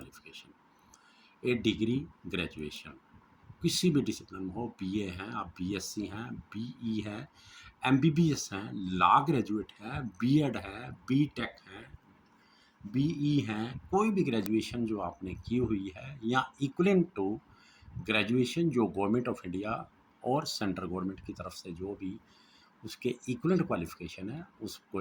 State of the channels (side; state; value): both; identical; correlation 1.00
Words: ए डिग्री ग्रेजुएशन किसी भी डिसिप्लिन में हो, BA हैं, आप BSc हैं, BE है, MBBS हैं, लॉ ग्रेजुएट है, B.Ed है, B.Tech है, BE हैं, कोई भी ग्रेजुएशन जो आपने की हुई है या इक्वलेंट टू ग्रेजुएशन जो गवर्नमेंट ऑफ इंडिया और सेंट्रल गवर्नमेंट की तरफ से जो भी उसके इक्वलेंट क्वालिफिकेशन है,